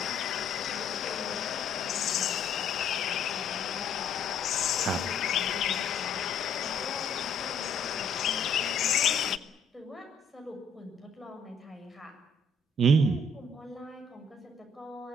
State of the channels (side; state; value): right; quieter; 3.2 dB